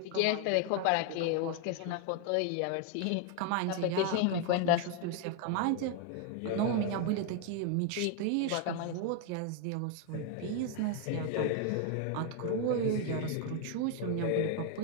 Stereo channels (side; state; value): both; different; correlation 0.01